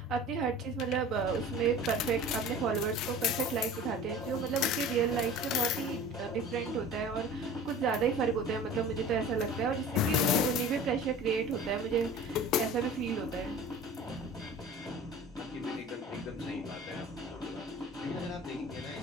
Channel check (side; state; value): both; normal; correlation 0.42